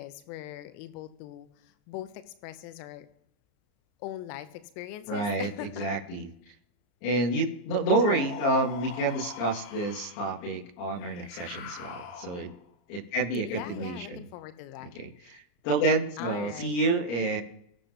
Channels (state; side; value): late; right; 34 ms